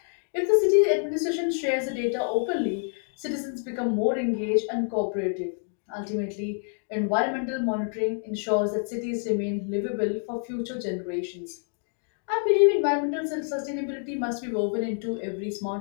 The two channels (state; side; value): silent; right; 56 dB below the other